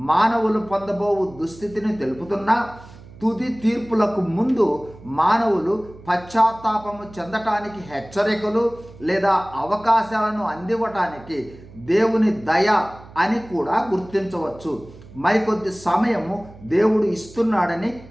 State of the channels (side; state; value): right; noise; hum, 20 dB below the sound